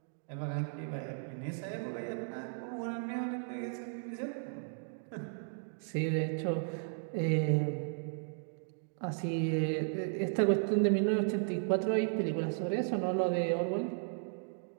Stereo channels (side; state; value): left; silent; digital silence